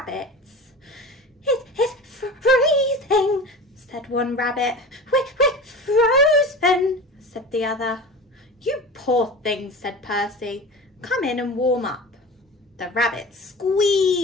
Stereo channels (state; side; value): normal; both; correlation 0.33